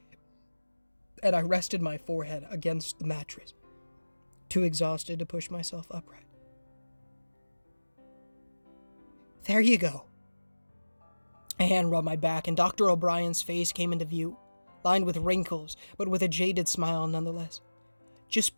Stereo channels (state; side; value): inverted; both; correlation -1.00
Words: and I rested my forehead against the mattress, too exhausted to push myself upright. "There you go." A hand rubbed my back, and Dr. O'Brien's face came into view, lined with wrinkles, but with a jaded smile nonetheless. "Just